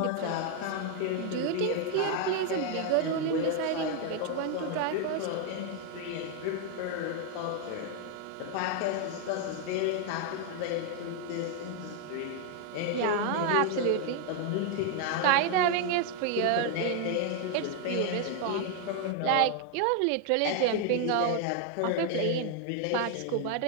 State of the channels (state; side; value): different; both; correlation 0.00